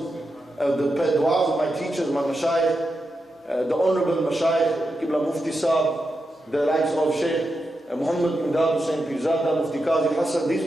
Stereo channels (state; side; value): normal; both; correlation 0.87